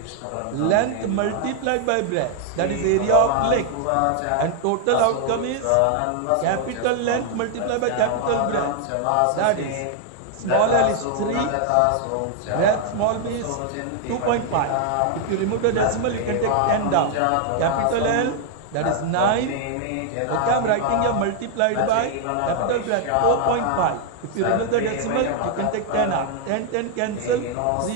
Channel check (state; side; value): different; both; correlation 0.00